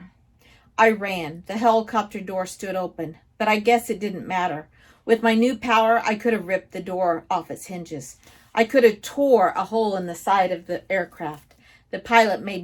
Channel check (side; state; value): both; identical; correlation 1.00